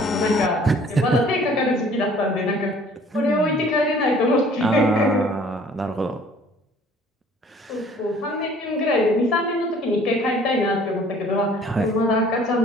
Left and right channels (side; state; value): both; normal; correlation 0.54